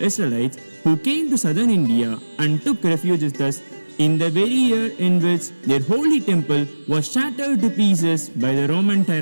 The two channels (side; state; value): both; inverted; correlation -1.00